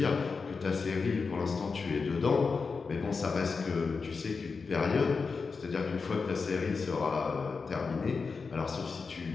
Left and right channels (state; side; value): quieter; right; 4.8 dB